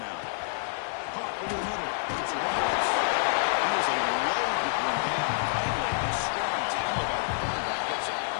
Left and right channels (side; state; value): right; silent; digital silence